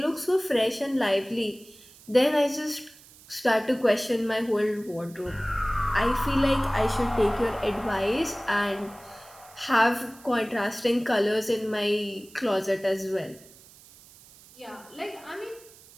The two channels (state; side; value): noise; right; hiss, 23 dB below the sound